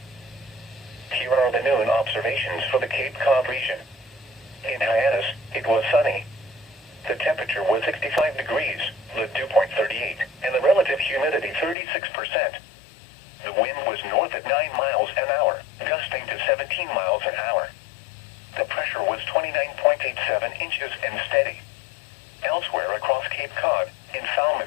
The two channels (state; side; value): drops out; right; at 11.8 s